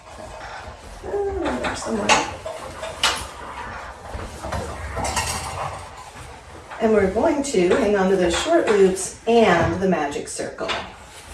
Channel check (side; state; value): both; identical; correlation 1.00